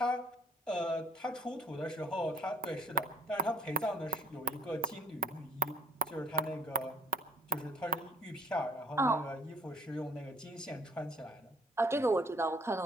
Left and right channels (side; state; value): both; normal; correlation 0.58